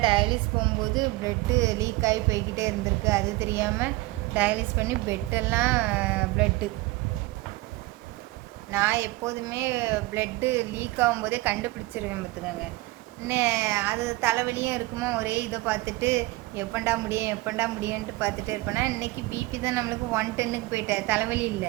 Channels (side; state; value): left; quieter; 20.3 dB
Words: டயாலிஸ் போகும்போது ப்ளட்டு லீக் ஆகி போய்கிட்டே இருந்திருக்கு. அது தெரியாமல் டயாலிஸ் பண்ணி பெட்டெல்லாம் ப்ளட்டு. நான் எப்போதுமே ப்ளட்டு லீக் ஆகும்போதே கண்டுபிடிச்சிருவேன் பார்த்துக்கோங்க. அது தலைவலியும் இருக்குமோ, ஒரே இதை பார்த்துட்டு எப்பண்டா முடியும்ன்ட்டு பார்த்துட்டே இருப்பேன்னா, இன்றைக்கி பிபி தான் நம்மளுக்கு 110க்கு போயிட்டேன், தலைவலி